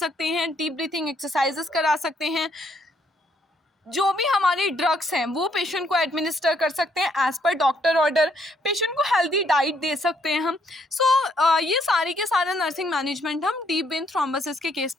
हैं, डीप ब्रीथिंग एक्सरसाइजेस करा सकते हैं। जो भी हमारे ड्रग्स हैं वो पेशेंट को एडमिनिस्टर कर सकते हैं as per doctor order, patient को हेल्दी डाइट दे सकते हैं हम। सो ये सारी के सारा नर्सिंग मैनेजमेंट हम डीप वेन थ्रोम्बोसिस के केस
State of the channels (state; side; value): normal; both; correlation 0.71